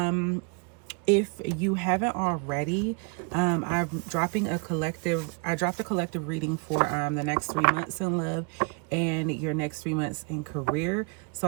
If you haven't already, I'm dropping I dropped a collective reading for the next 3 months in love and your next 3 months in career. So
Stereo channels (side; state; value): left; quieter; 35.1 dB